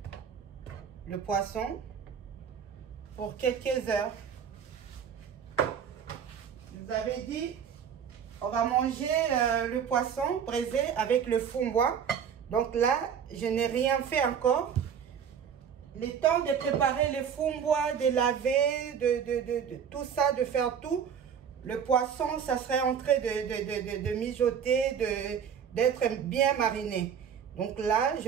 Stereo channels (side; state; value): left; quieter; 7.7 dB